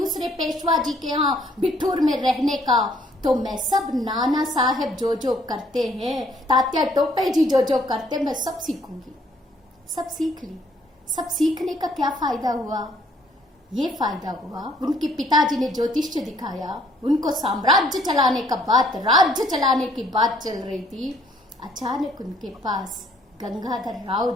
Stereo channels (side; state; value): both; normal; correlation 0.64